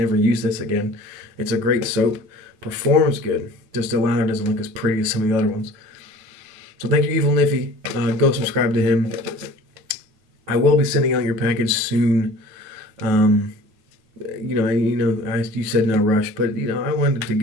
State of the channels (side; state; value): left; late; 9.5 ms